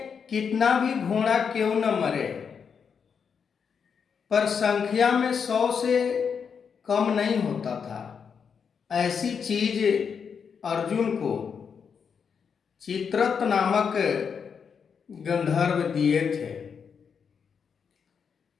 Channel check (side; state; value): right; quieter; 6.5 dB